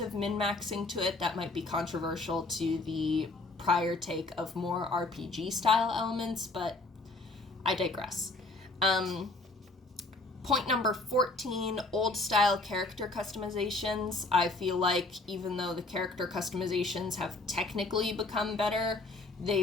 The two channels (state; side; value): quieter; right; 3.1 dB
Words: of min-maxing to it that might be controversial to the prior take of more RPG style elements, but I digress. Point number 14, old style character customizations. I feel like even though the character customizations have technically become better,